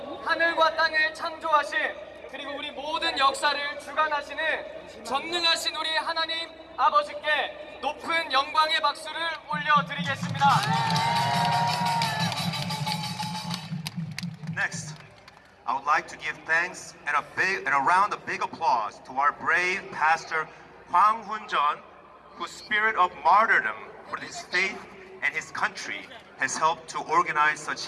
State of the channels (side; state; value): both; identical; correlation 1.00